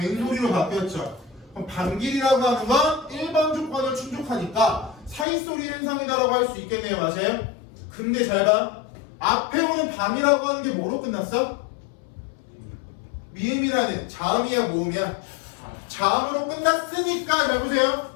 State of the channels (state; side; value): drops out; right; at 5.2 s